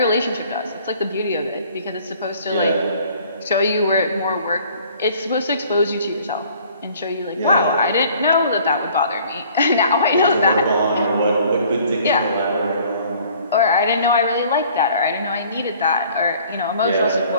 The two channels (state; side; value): inverted; both; correlation -0.55